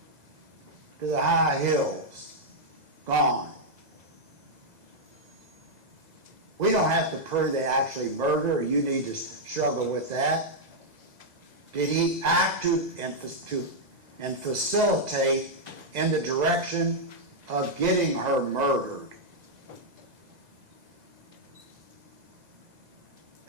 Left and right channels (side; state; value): left; late; 2.0 ms